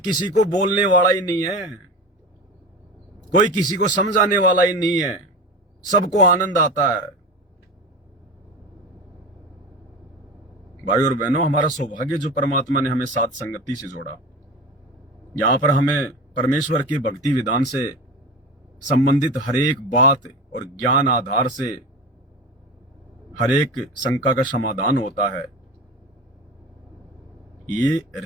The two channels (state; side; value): normal; both; correlation 0.29